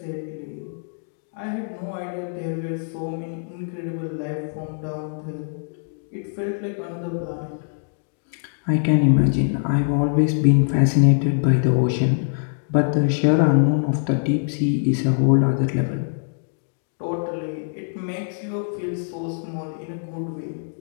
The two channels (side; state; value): right; silent; digital silence